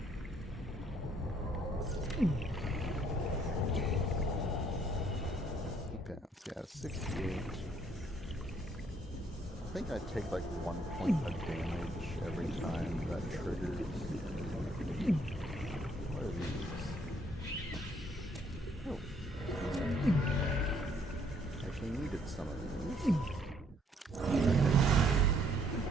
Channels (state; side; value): normal; both; correlation 0.66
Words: Okay, yeah, 68. I think I take like 1 point of damage every time that triggers. What are these? Oh. Actually needed some of these.